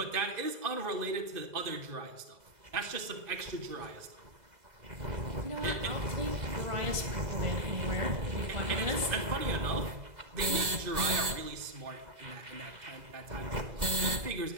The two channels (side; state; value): left; late; 2.0 ms